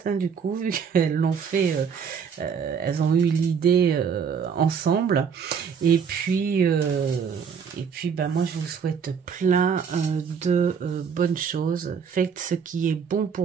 hein, du coup, vu qu'elles l'ont fait, elles ont eu l'idée ensemble. Et puis, ben, moi, je vous souhaite plein de bonnes choses. Faites ce qui est bon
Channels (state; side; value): quieter; left; 6.6 dB